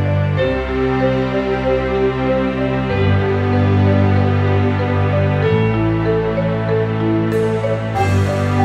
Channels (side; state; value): both; identical; correlation 1.00